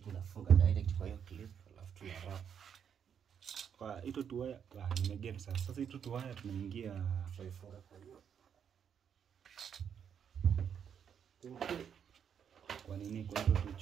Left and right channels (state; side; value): quieter; left; 7.9 dB